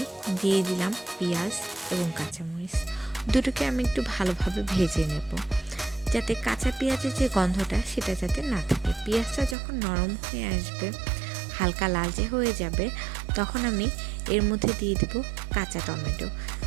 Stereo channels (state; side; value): drops out; left; at 9.6 s